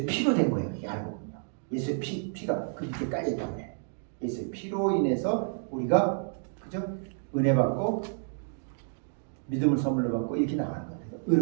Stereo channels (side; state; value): left; silent; 58 dB below the other